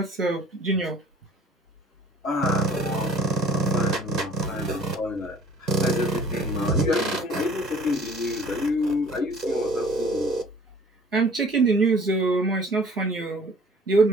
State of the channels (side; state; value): both; normal; correlation 0.52